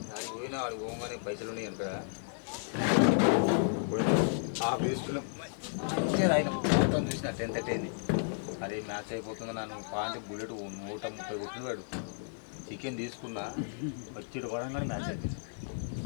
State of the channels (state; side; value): silent; right; 56 dB below the other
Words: అది పోయినా వాడు పోగానే పైసలు ఉన్నాయి అనుకో ఆ బేస్లో మంచిగా ఆయన మొత్తం చూసిన 10:30 అయింది. అదే మ్యాచ్ అయిపోతుంది నన్ను పాయింట్ బుల్లెట్ 130 కొట్టినాడు. చికెన్ తీసుకున్నా వచ్చి పడంగానే మ్యాచ్ అయిపోయింది.